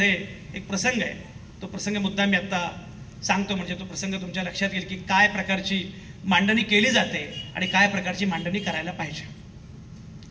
एक प्रसंग आहे. तो प्रसंग मुद्दा मी आत्ता सांगतो, म्हणजे तो प्रसंग तुमच्या लक्षात येईल की काय प्रकारची मांडणी केली जाते आणि काय प्रकारची मांडणी करायला पाहिजे.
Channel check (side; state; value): both; identical; correlation 1.00